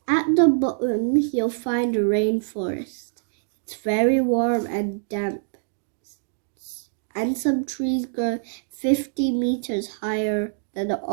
At the bottom you'll find a rainforest. It's very warm and damp, and some trees grow 50 meters higher than the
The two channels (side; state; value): left; silent; digital silence